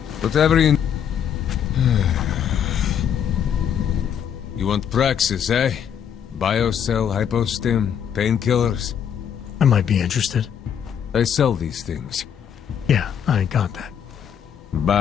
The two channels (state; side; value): quieter; right; 8.6 dB